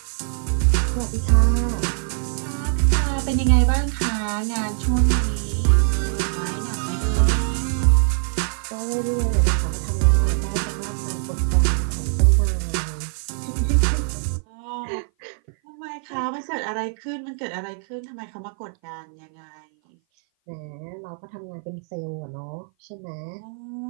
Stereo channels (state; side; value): silent; left; 57 dB below the other